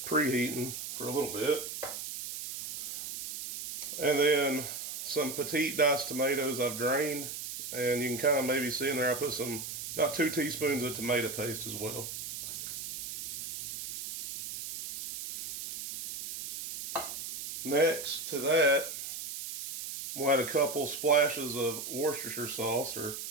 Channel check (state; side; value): noise; right; hiss, 7 dB below the sound